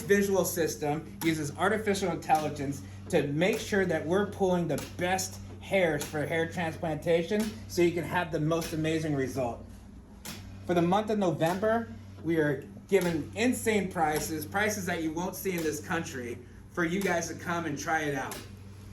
visual system, uses artificial intelligence to make sure that we're pulling the best hairs for hair transplantation so you can have the most amazing result. For the month of November, we are giving insane prices that you won't see in this country for you guys to come and try it out.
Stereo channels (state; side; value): identical; both; correlation 1.00